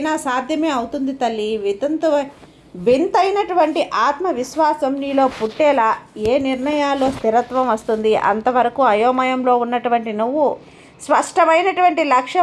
సాధ్యమే అవుతుంది తల్లి. వింతైనటువంటి ఆత్మవిశ్వాసం నీలో పుట్టేలా ఏ నిర్ణయాల్లో స్థిరత్వం వస్తుంది. అంతవరకు అయోమయంలో ఉన్నటువంటి నువ్వు స్పష్టమైనటువంటి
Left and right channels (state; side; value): identical; both; correlation 1.00